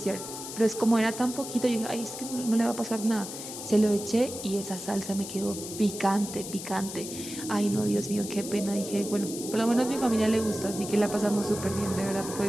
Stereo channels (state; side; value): noise; left; hiss, 9 dB below the sound